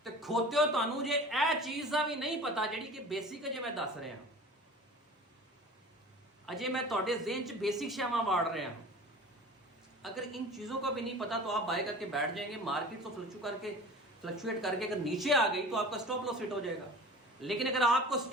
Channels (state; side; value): normal; both; correlation 0.39